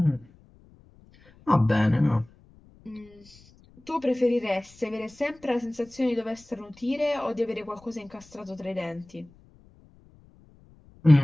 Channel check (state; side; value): noise; left; rumble, 27 dB below the sound